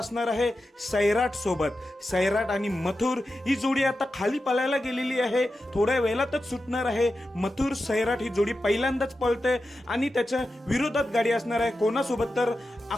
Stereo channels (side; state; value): both; normal; correlation 0.91